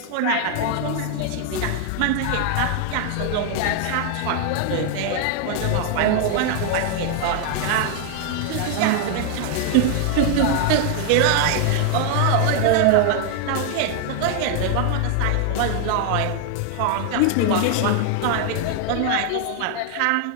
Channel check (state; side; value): different; both; correlation 0.00